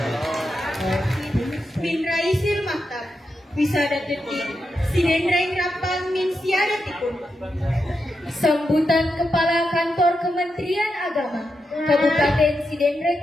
Min Raisil Maktab, Wisada Detik, Sinendraing Rapang Min Siadatikun. Sambutan Kepala Kantor Kementerian Agama Kabupaten Sidendreng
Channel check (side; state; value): both; normal; correlation 0.86